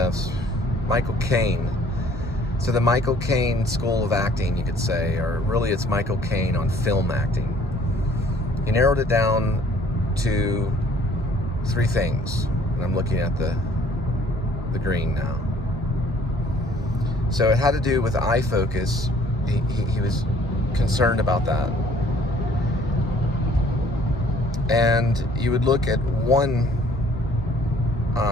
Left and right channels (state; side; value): normal; both; correlation 0.57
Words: Caine, so the Michael Caine School of Acting, you could say, or really it's Michael Caine on film acting. He narrowed it down to 3 things. And I'm looking at the green now. So it had to do with eye focus. He was concerned about that. And you would look at one